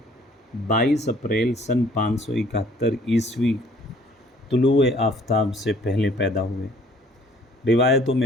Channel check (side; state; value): both; normal; correlation 0.57